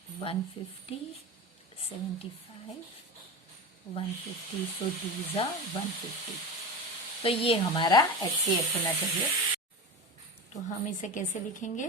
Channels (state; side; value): normal; both; correlation 0.26